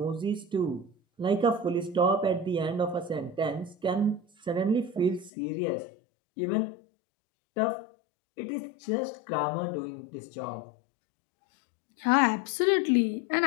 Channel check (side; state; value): right; drops out; at 5.3 s